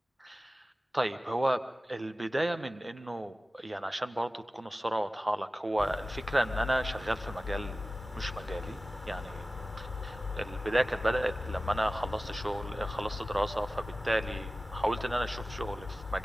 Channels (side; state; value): both; normal; correlation 0.96